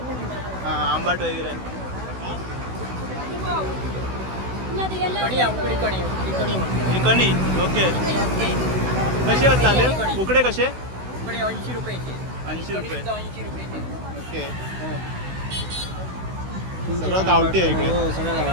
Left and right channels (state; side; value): late; left; 16 ms